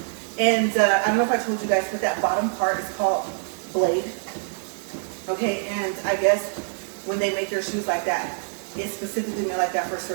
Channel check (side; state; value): left; silent; digital silence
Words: And I don't know if I told you guys, but that bottom part is called blade. Okay, and I guess when they make their shoes like that, it's specifically made like that for a